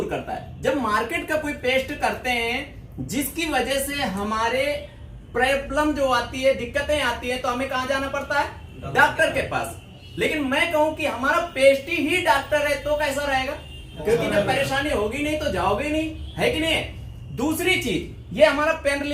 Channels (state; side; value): identical; both; correlation 1.00